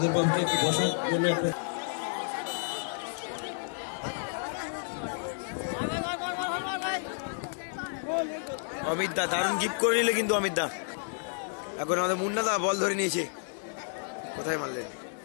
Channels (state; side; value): silent; right; 57 dB below the other